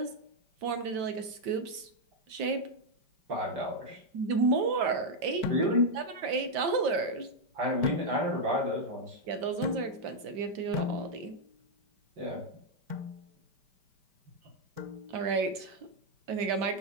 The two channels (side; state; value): left; late; 5.1 ms